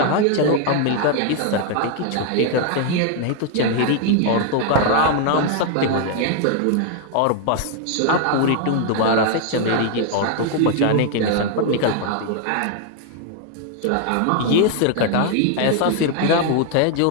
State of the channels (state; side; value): different; both; correlation 0.00